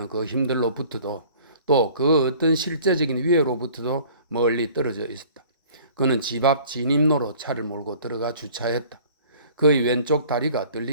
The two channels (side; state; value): both; inverted; correlation -0.50